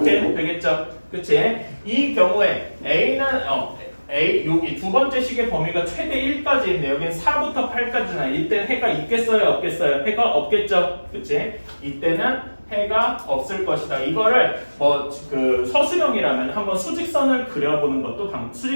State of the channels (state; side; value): inverted; both; correlation -1.00